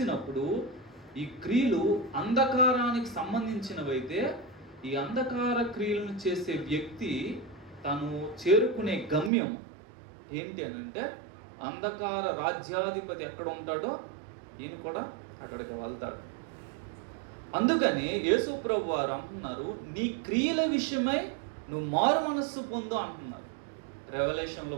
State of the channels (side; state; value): left; drops out; at 9.3 s